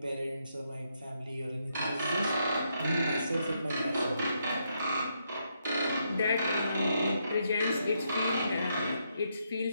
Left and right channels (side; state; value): both; inverted; correlation -0.78